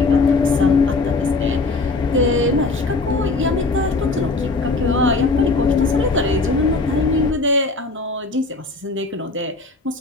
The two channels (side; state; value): right; quieter; 3.5 dB